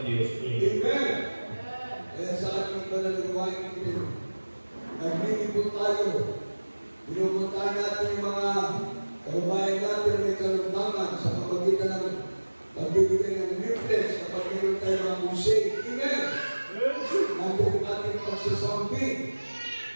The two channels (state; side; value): inverted; both; correlation -1.00